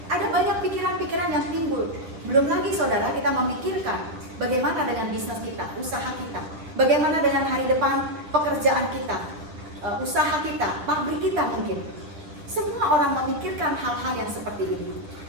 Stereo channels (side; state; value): left; late; 10 ms